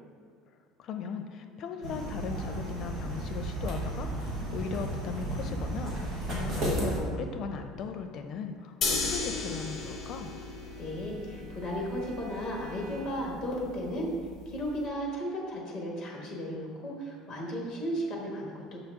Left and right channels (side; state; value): both; normal; correlation 0.45